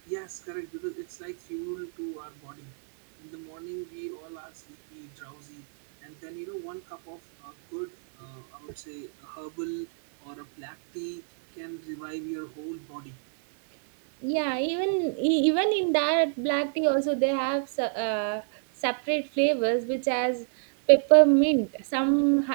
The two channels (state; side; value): silent; left; digital silence